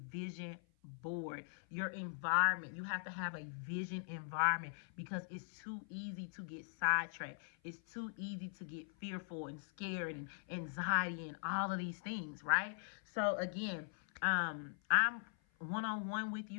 board. Your environment, you have to have a vision environment, because it's too easy to get sidetracked. It's too easy to get fearful and scared and anxiety and all of these things, right? So again, I'm one-on-one with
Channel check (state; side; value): silent; right; 50 dB below the other